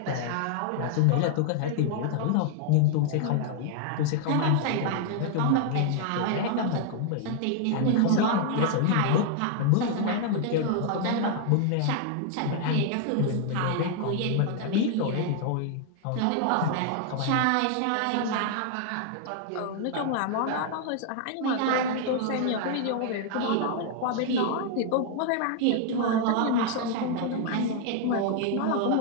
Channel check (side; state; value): both; different; correlation 0.00